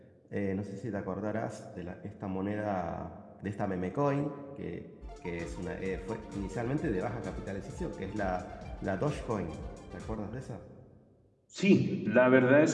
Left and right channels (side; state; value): both; identical; correlation 1.00